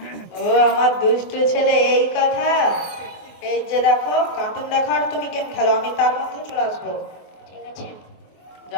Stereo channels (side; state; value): right; late; 24 ms